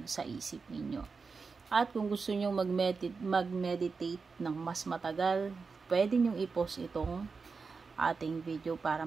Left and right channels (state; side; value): quieter; left; 4.8 dB